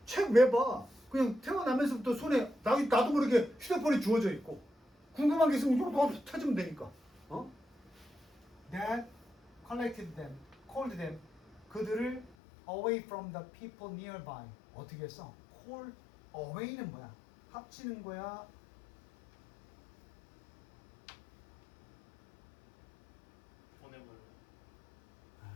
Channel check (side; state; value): right; drops out; at 12.4 s